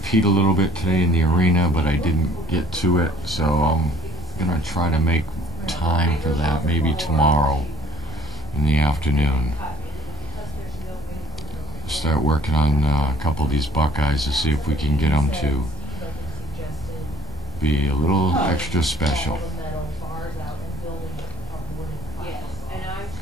Pete a little bit today in the arena, but I didn't get to it. So I'm going to try to make time for that maybe tomorrow in the afternoon. Start working on a couple of these Buckeyes to see if we can get them to be a little extra special.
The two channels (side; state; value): both; normal; correlation 0.55